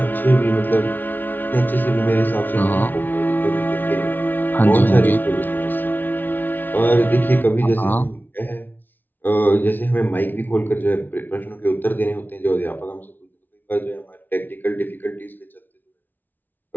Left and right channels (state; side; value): late; right; 0.088 ms